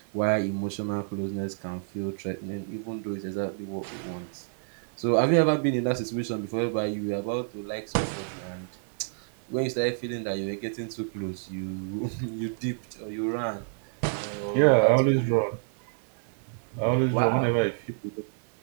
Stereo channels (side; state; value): left; silent; 59 dB below the other